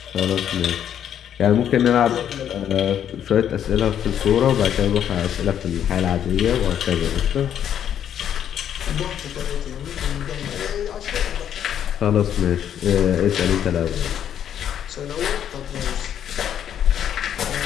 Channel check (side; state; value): right; quieter; 9.7 dB